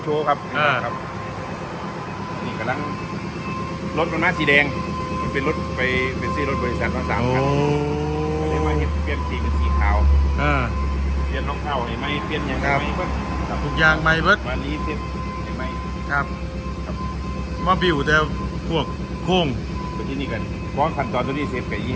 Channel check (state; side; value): identical; both; correlation 1.00